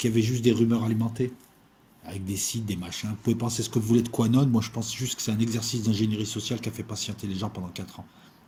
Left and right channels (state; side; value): identical; both; correlation 1.00